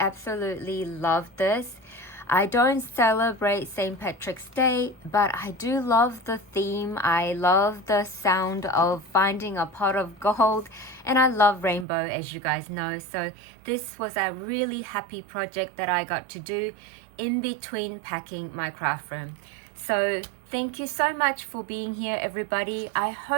love this. I don't celebrate St. Patrick's Day, but I do love the theme. I love the sound of finding a pot of gold, and I love rainbow, as you guys know. So this was a really happy project that I got to do in between packing my craft room. So thank you so much for being here, everybody. I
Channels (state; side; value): drops out; left; at 11.9 s